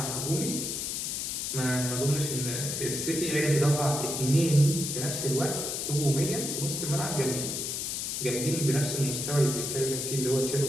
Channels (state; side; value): noise; left; hiss, 2 dB below the sound